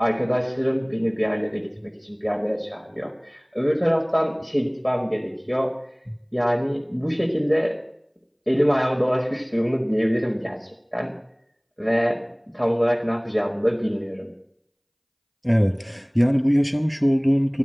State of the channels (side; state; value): both; identical; correlation 1.00